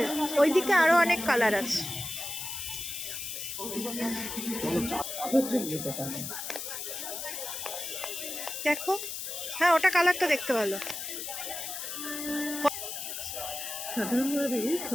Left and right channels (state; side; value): noise; left; hiss, 6 dB below the sound